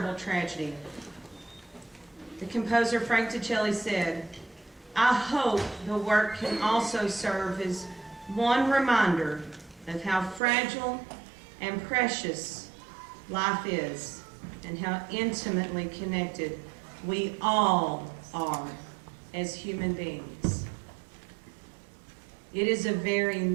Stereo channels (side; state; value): left; drops out; at 10.4 s